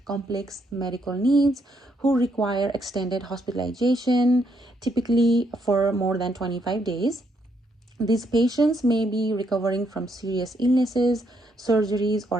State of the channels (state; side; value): normal; both; correlation 0.75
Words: complex medical needs who require extended hospitalization, typically for more than 25 days. These patients may be recovering from serious illnesses, surgeries,